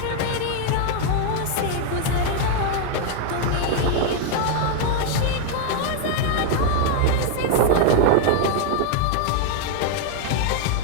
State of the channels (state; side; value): different; both; correlation 0.00